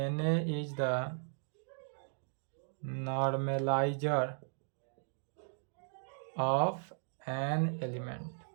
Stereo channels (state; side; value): silent; left; digital silence